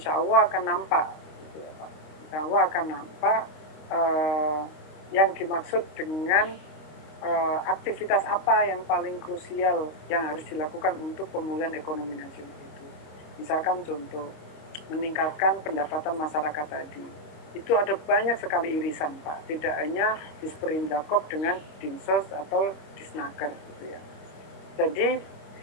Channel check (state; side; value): late; right; 26 ms